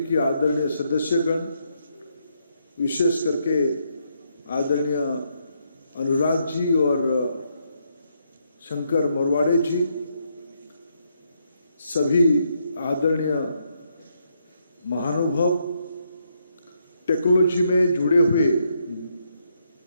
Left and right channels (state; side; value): inverted; both; correlation -0.77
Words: आदरणीय सदस्यगण, विशेष करके आदरणीय अनुराग जी और शंकर मोरवाड़े जी, सभी आदरणीय महानुभाव, टेक्नोलॉजी में जुड़े हुए